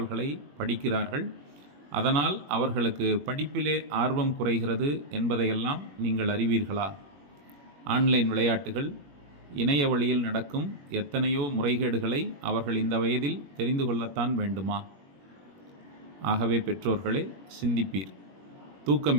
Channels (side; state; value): left; late; 21 ms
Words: படிக்கிறார்கள். அதனால் அவர்களுக்கு படிப்பிலே ஆர்வம் குறைகிறது என்பதையெல்லாம் நீங்கள் அறிவீர்களா? ஆன்லைன் விளையாட்டுகள், இணைய வழியில் நடக்கும் எத்தனையோ முறைகேடுகளை அவர்கள் இந்த வயதில் தெரிந்து கொள்ளத்தான் வேண்டுமா? ஆகவே பெற்றோர்களே, சிந்திப்பீர்.